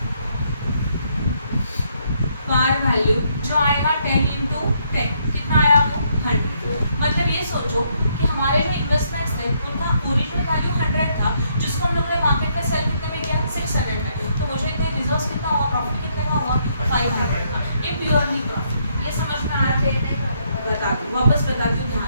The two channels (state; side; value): inverted; both; correlation -0.72